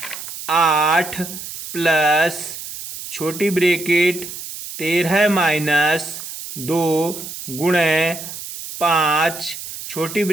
8 प्लस छोटी ब्रैकेट 13 माइनस 2 गुणा 5 छोटी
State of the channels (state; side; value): noise; right; hiss, 10 dB below the sound